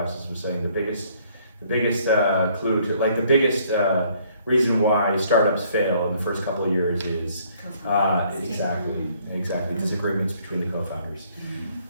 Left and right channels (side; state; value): both; inverted; correlation -0.63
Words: was saying the biggest clue to, like the biggest reason why startups fail in the first couple of years is exactly disagreements between the co-founders.